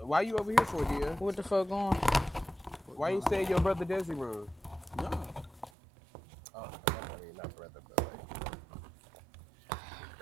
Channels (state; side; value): drops out; left; at 5.7 s